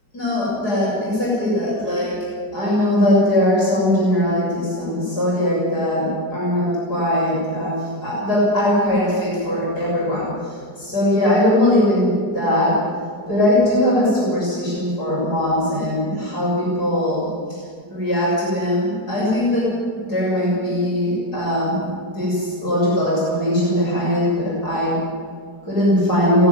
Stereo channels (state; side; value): late; right; 4.7 ms